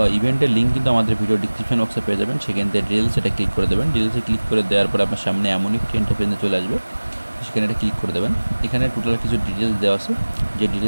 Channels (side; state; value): both; inverted; correlation -1.00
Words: ইভেন্টের লিঙ্ক কিন্তু আমাদের ভিডিও ডিসক্রিপশন বক্সে পেয়ে যাবেন, সেখান থেকে ডিটেলস এটা ক্লিক করে দেবেন। ডিটেলসে ক্লিক করে দেওয়ার পর আপনার সামনে এমন একটি ইন্টারফেসে চলে আসবে, সেখানে এটা ক্লিক করে দেবেন। এখানে টোটাল কিছু ডিটেলস দেওয়া আছে, যে